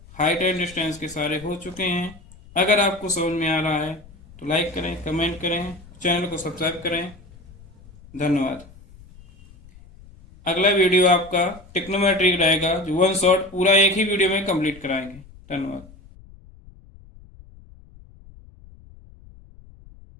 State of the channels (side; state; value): left; noise; rumble, 22 dB below the sound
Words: height and distance के सारे हो चुके हैं। अगर आपको समझ में आ रहा है तो लाइक करें, कमेंट करें, चैनल को सब्सक्राइब करें। धन्यवाद। अगला वीडियो आपका ट्रिग्नोमेट्री रहेगा, जो वन शॉट पूरा एक ही वीडियो में कंप्लीट कराएंगे। धन्यवाद।